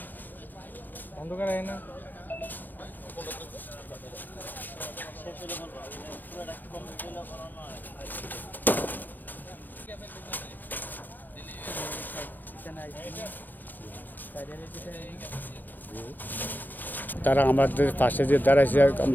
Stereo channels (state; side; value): late; right; 0.087 ms